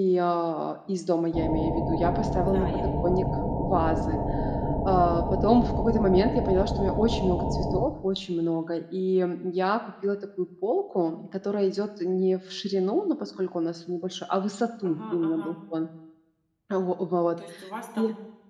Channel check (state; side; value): identical; both; correlation 1.00